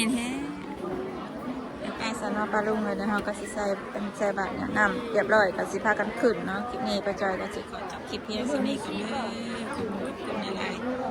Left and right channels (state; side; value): identical; both; correlation 1.00